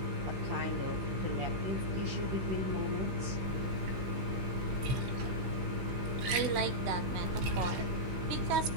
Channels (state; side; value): late; left; 16 ms